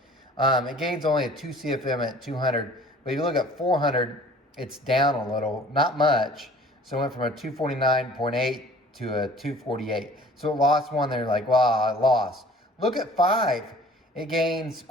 It gains only a 2 CFM at 200, but if you look at 400, it's down a little, not much. So it went from a 249.8 to a 248. So it lost one there, like, wow, I lost. Look at 5. It gains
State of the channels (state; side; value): normal; both; correlation 0.50